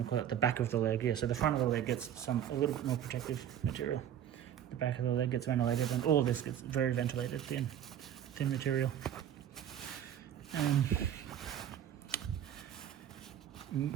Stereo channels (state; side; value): quieter; left; 10.1 dB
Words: to call it the back of the leg. Yeah, so the front of the leg gets a little bit more protective material. The back of the leg gets ventilated, and all this gets very ventilated, thin material.